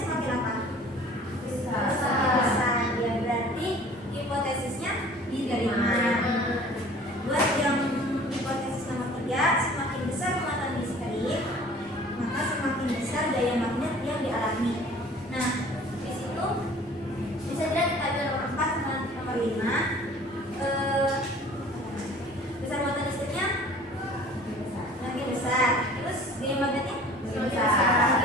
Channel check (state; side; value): normal; both; correlation 0.48